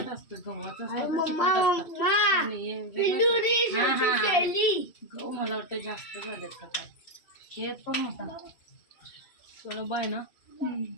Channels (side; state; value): right; late; 2.7 ms